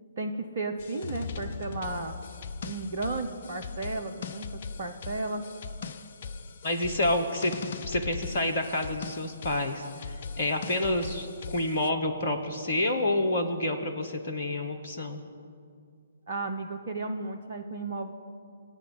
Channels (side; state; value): both; inverted; correlation -0.64